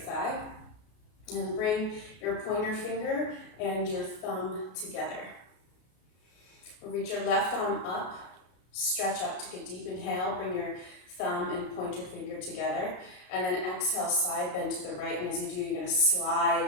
And bring your pointer finger and your thumb together. Reach your left arm up. Stretch up, take a deep inhale. Bring your thumb and pointer finger together. And then exhale, side bend to the right. And as you do, you're going to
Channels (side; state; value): right; late; 33 ms